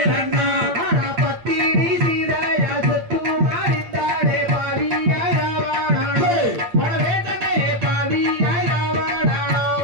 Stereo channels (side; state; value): left; late; 8.7 ms